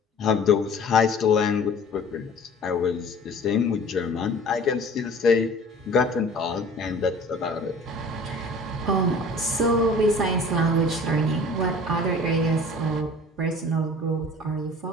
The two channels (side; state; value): both; normal; correlation 0.46